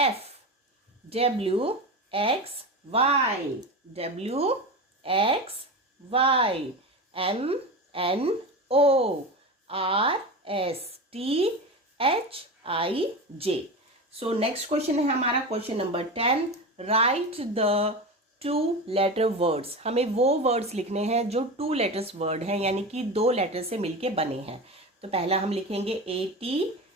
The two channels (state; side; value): normal; both; correlation 0.25